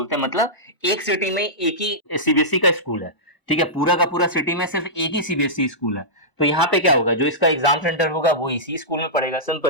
हैं, मतलब एक सिटी में एक ही सीबीएसई का स्कूल है। ठीक है, पूरा का पूरा सिटी में सिर्फ एक ही सीबीएसई स्कूल है। तो यहाँ पे क्या होगा, जो इसका एग्जाम सेंटर होगा वो इसी स्कूल में पड़ेगा,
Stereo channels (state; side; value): late; right; 1.0 ms